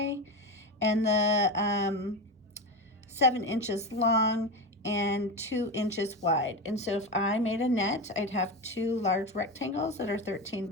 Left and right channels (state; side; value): normal; both; correlation 0.19